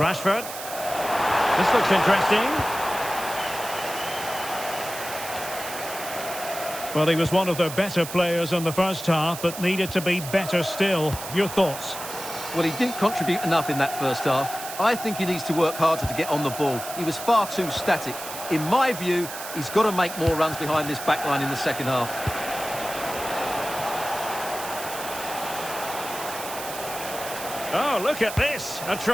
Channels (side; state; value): right; noise; hiss, 10 dB below the sound